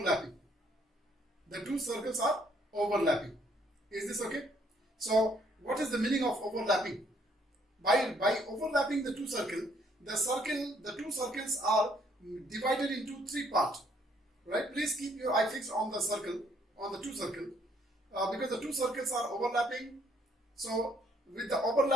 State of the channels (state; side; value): normal; both; correlation 0.66